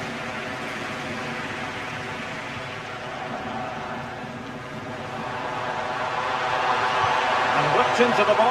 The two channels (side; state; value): left; noise; hum, 28 dB below the sound